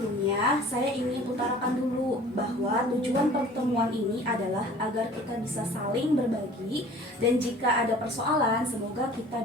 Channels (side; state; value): both; normal; correlation 0.47